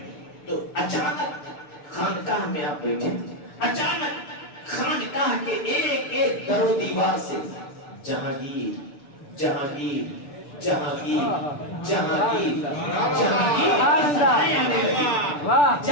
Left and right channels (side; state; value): right; late; 6.8 ms